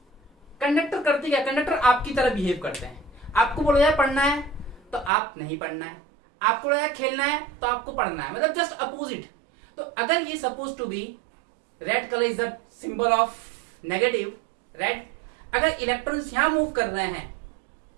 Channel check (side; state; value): left; drops out; at 5.1 s